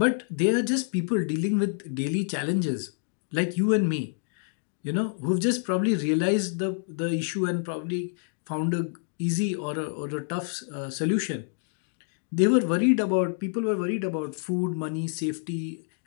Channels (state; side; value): silent; right; digital silence